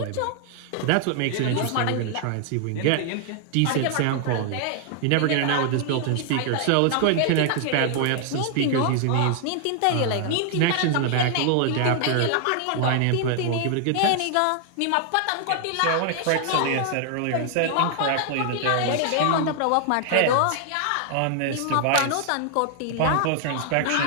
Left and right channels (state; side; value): different; both; correlation 0.00